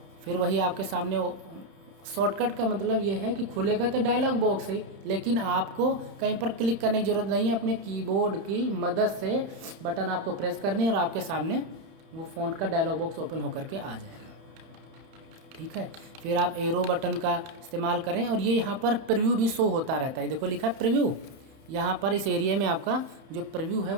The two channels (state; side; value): late; left; 31 ms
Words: फिर वही आपके सामने शॉर्टकट का मतलब ये है कि खुलेगा तो डायलॉग बॉक्स है, लेकिन आपको कहीं पर क्लिक करने की ज़रूरत नहीं है, अपने कीबोर्ड की मदद से बटन आपको प्रेस करनी है और आपके सामने वो फ़ॉन्ट का डायलॉग बॉक्स ओपन होकर के आ जाएगा, ठीक है। फिर आप एरो बटन का इस्तेमाल करें और ये यहाँ पर प्रीव्यू भी शो होता रहता है, देखो लिखा है प्रीव्यू, यहाँ पर इस एरिया में आपका जो प्रीव्यू है